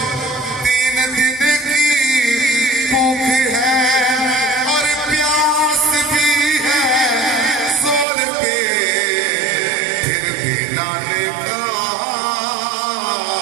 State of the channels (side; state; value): left; drops out; at 8.1 s